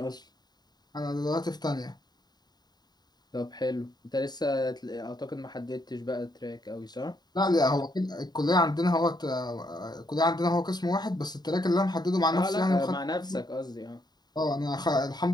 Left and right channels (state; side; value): late; right; 0.20 ms